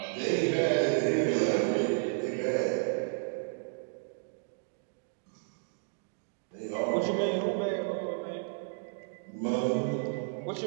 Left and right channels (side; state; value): left; silent; digital silence